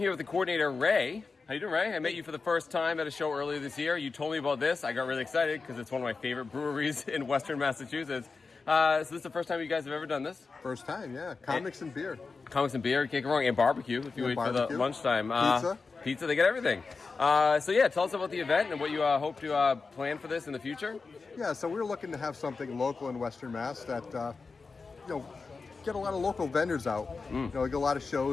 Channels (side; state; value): right; quieter; 4.4 dB